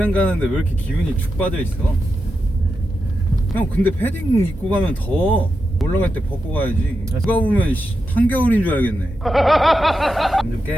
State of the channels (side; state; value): both; normal; correlation 0.88